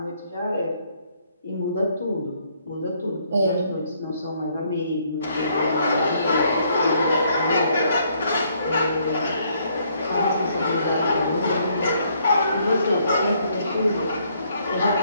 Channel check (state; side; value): inverted; both; correlation -0.68